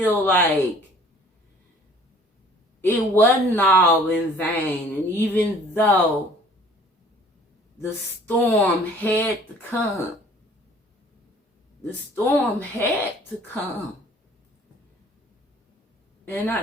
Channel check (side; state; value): both; normal; correlation 0.53